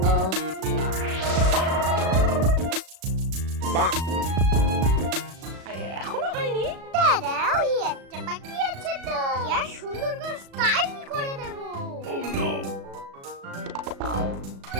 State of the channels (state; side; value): late; left; 36 ms